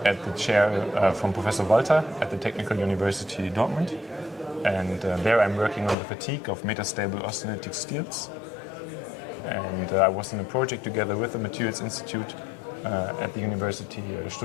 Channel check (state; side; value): drops out; right; at 6.0 s